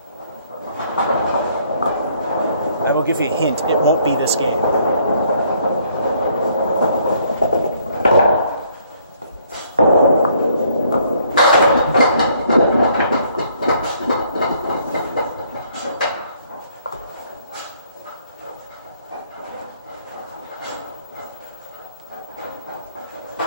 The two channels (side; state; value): both; inverted; correlation -0.65